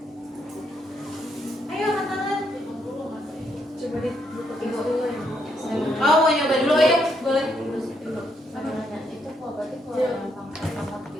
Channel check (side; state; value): both; normal; correlation 0.76